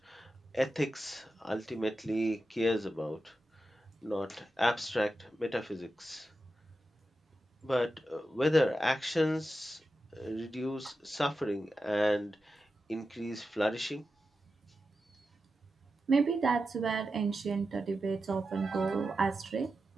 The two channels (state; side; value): normal; both; correlation 0.91